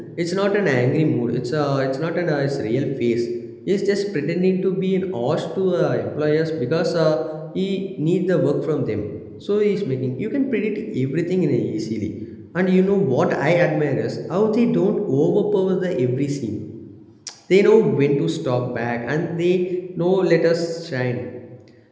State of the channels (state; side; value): identical; both; correlation 1.00